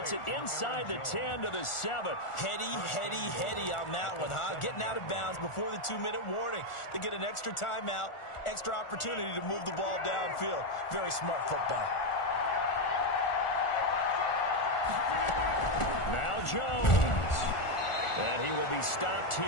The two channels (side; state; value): right; late; 1.4 ms